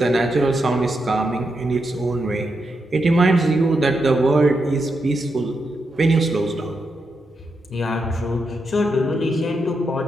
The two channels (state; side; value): normal; both; correlation 0.84